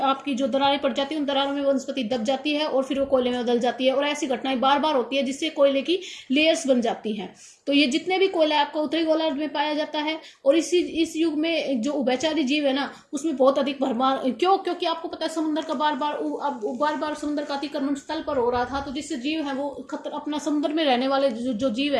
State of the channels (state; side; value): identical; both; correlation 1.00